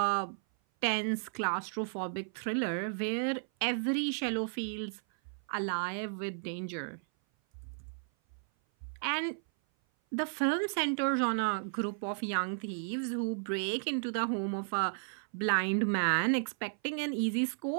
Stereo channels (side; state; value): left; silent; 55 dB below the other